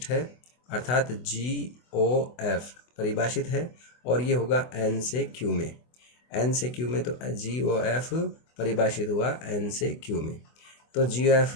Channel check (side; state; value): right; late; 24 ms